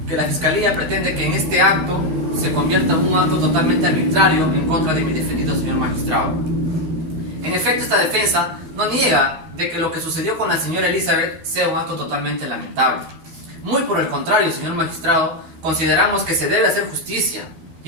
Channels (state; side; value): late; left; 13 ms